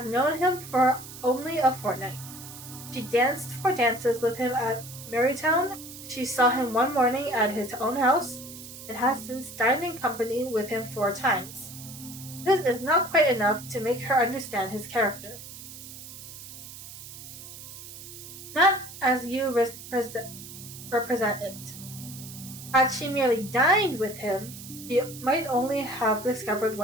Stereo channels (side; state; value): right; noise; hiss, 14 dB below the sound